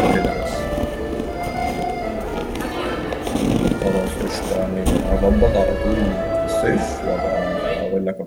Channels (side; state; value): both; identical; correlation 1.00